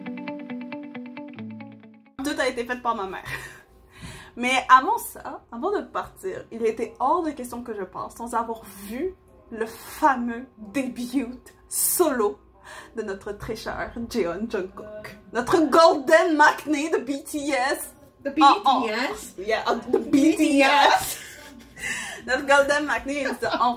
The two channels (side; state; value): both; identical; correlation 1.00